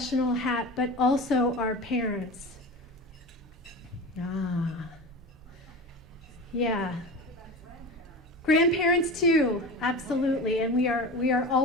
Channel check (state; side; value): normal; both; correlation 0.30